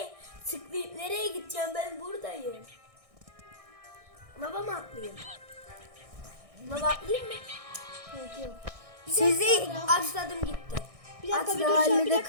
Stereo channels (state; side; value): late; left; 1.6 ms